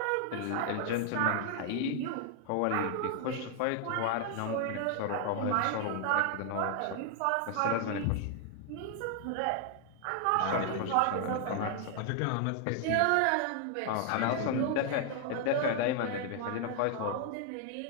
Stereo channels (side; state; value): both; different; correlation 0.00